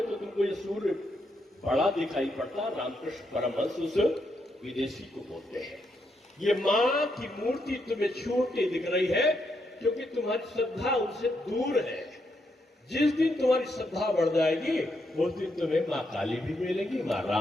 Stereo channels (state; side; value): normal; both; correlation 0.79